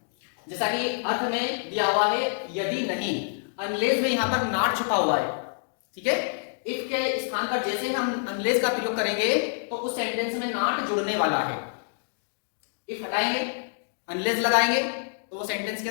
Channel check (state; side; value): silent; right; digital silence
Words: जैसा कि अर्थ में दिया हुआ है यदि नहीं, अनलेस में यहां पर नॉट छुपा हुआ है, ठीक है। इफ के स्थान पर जैसे हम अनलेस का प्रयोग करेंगे तो उस सेंटेंस में नॉट जुड़ने वाला है। इफ हटाएंगे, अनलेस लगाएंगे तो वो सेंटेंस